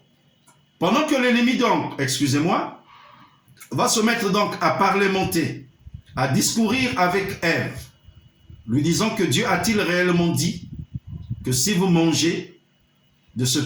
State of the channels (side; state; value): both; identical; correlation 1.00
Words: pendant que l'ennemi donc, excusez-moi, va se mettre donc à parlementer, à discourir avec Ève, lui disant que Dieu a-t-il réellement dit que si vous mangez de